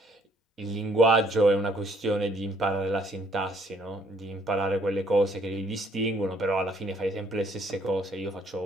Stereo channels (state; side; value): normal; both; correlation 0.65